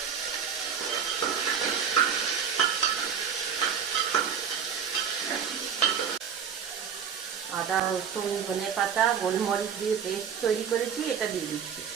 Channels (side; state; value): left; quieter; 7.5 dB